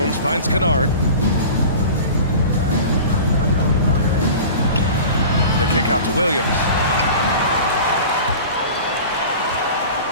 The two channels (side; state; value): both; inverted; correlation -0.37